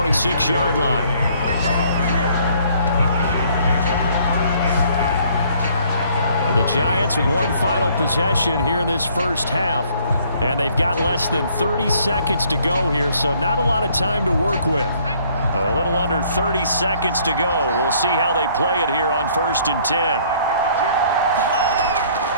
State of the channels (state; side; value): inverted; both; correlation -0.61